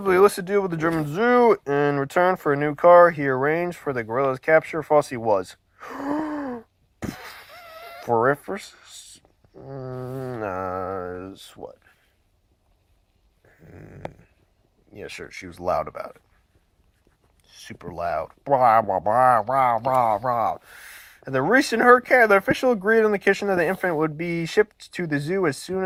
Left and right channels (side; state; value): both; identical; correlation 1.00